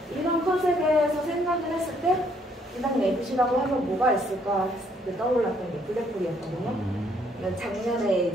이런 컨셉에서 생각을 했을 때 인상 내부시라고 하면 뭐가 있을까 떠올랐던 게 블랙홀이었거든요. 작년에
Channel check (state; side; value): normal; both; correlation 0.67